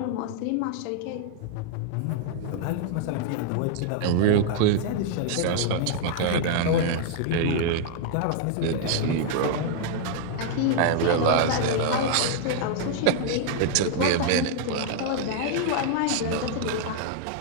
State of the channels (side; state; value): both; different; correlation -0.01